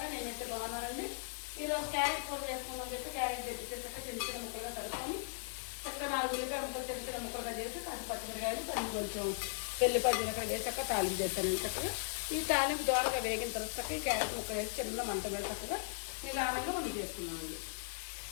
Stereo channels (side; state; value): right; silent; digital silence